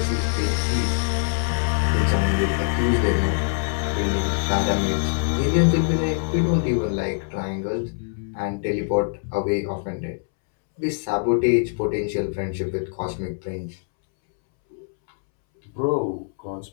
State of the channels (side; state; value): right; silent; 63 dB below the other